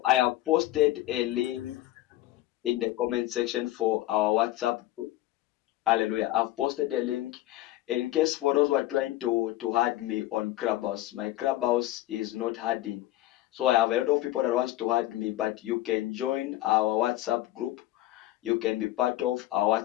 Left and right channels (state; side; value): quieter; right; 15.7 dB